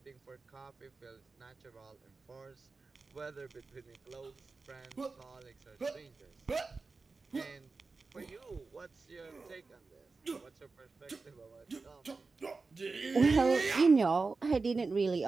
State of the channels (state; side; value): quieter; left; 4.1 dB